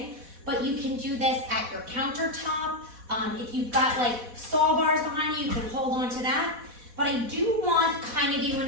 but you can do this at your countertop. If you've got like stall bars behind you, you can hold on to that. But I do want kind of you in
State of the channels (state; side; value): late; left; 4.1 ms